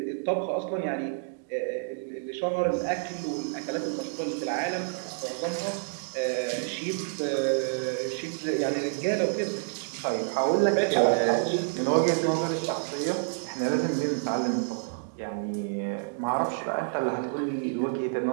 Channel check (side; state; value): left; silent; digital silence